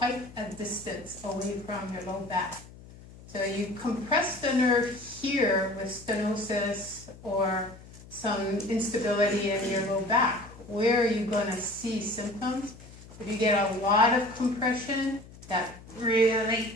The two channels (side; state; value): left; noise; hum, 19 dB below the sound